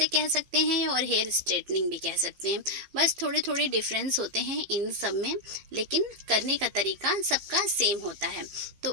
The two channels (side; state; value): left; late; 15 ms